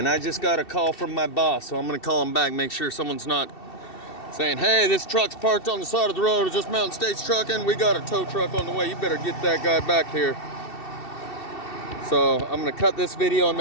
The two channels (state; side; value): late; right; 2.7 ms